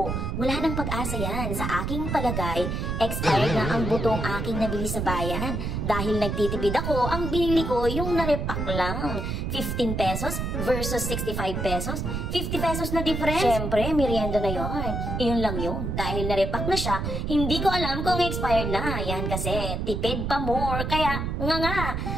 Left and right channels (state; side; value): noise; right; rumble, 2 dB below the sound